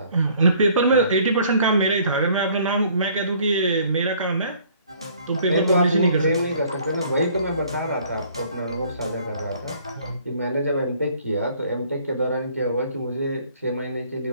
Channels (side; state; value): both; inverted; correlation -0.58